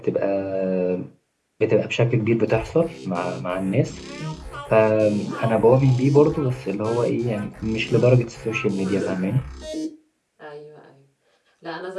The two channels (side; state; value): both; identical; correlation 1.00